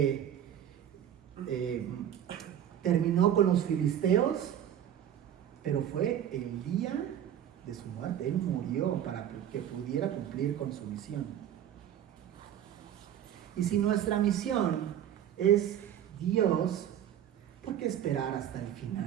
terminó con los filisteos, pero fue el día de su muerte. Él murió para que pudiera cumplir con su misión. Y si nuestra misión es Dios, ¿por qué esperar hasta el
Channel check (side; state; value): left; quieter; 10.3 dB